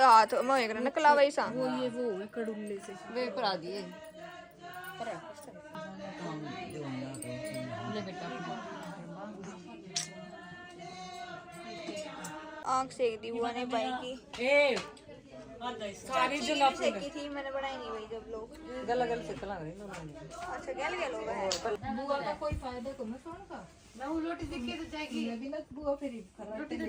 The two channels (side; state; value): both; identical; correlation 1.00